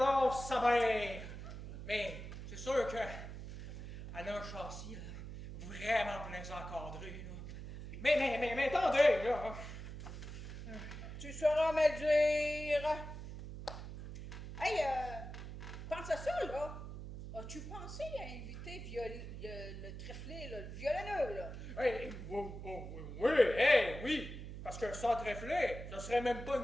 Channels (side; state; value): right; noise; hum, 9 dB below the sound